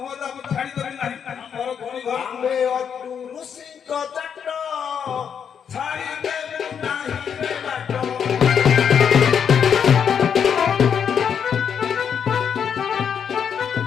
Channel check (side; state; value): right; quieter; 7.6 dB